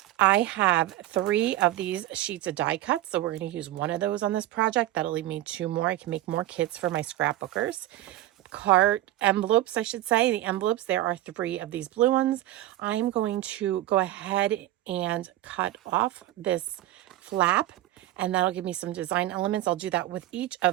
I have 3 of these sheets of die cuts, so we're going to use 1 of those on this project. That'll leave me 2 more. I can make more kits for my scrapbookers. Card envelopes, I should say. The envelopes, there are 3 of these blue ones. I'm going to go ahead and cut off this flap, and that'll give me some design elements. I'll do that with each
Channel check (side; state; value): left; quieter; 14.9 dB